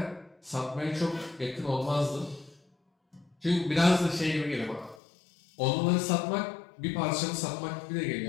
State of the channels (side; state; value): right; drops out; at 5.0 s